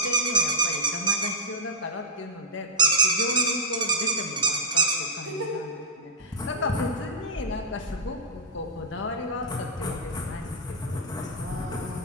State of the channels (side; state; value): both; normal; correlation -0.09